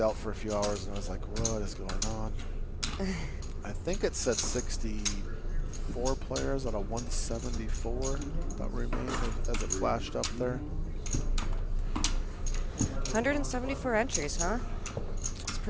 for a few hours and I was like, what is going on? I think it said 64 players out of 174 that remained as it flashed up there. 174 entries, huh? It's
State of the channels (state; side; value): identical; both; correlation 1.00